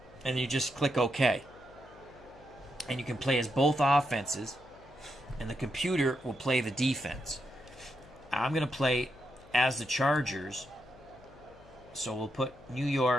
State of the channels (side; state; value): left; noise; hum, 23 dB below the sound